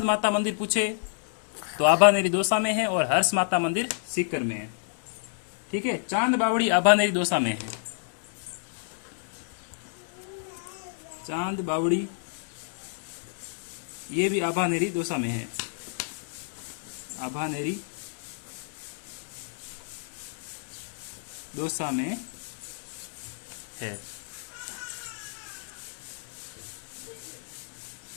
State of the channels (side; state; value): right; silent; digital silence